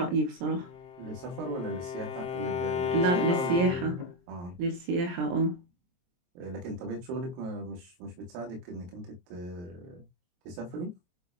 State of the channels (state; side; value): late; left; 23 ms